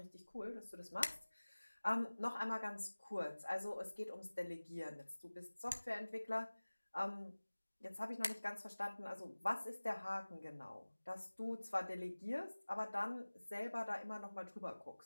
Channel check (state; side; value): inverted; both; correlation -1.00